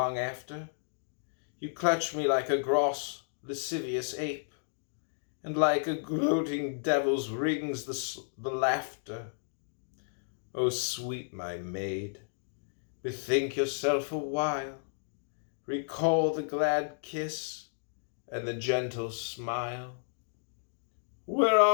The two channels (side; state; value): right; silent; digital silence